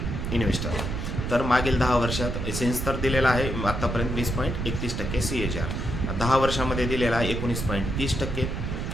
इन्व्हेस्टर. तर मागील 10 वर्षात सिन्स तर दिलेला आहे आत्तापर्यंत 20.31% CAGR, 10 वर्षामध्ये दिलेला आहे 19.30%,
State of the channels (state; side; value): noise; right; rumble, 3 dB below the sound